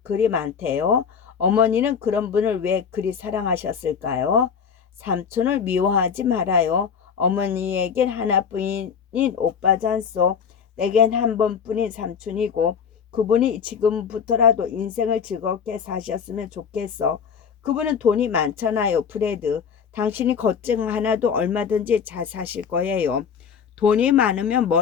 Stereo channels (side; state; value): right; quieter; 6.9 dB